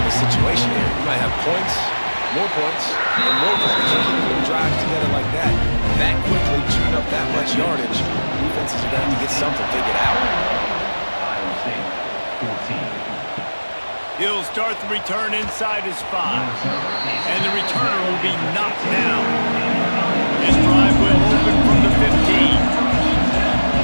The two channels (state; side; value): inverted; both; correlation -1.00